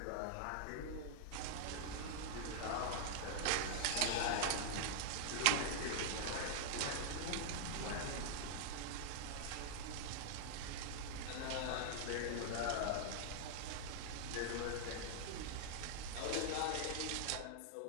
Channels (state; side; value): different; both; correlation -0.01